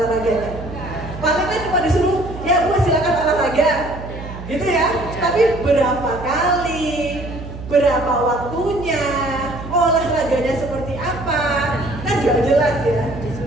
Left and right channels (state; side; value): noise; right; hum, 11 dB below the sound